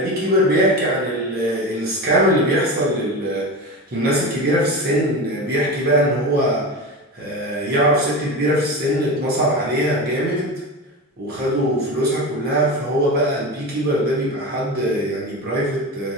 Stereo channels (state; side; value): normal; both; correlation 0.25